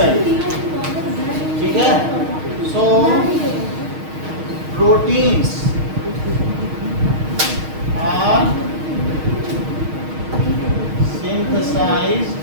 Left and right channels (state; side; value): late; left; 6.4 ms